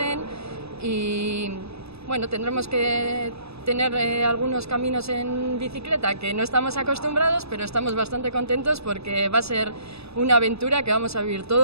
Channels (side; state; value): left; late; 0.79 ms